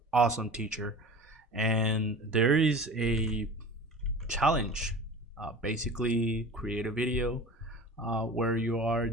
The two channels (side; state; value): both; normal; correlation 0.37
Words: awesome teacher. And there is a challenge. Basically, create a video where you are